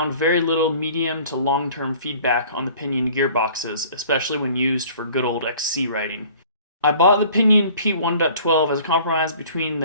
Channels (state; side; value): inverted; both; correlation -0.50